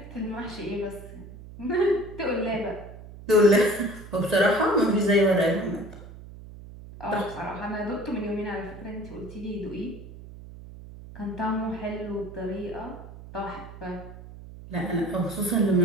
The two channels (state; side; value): noise; right; hum, 15 dB below the sound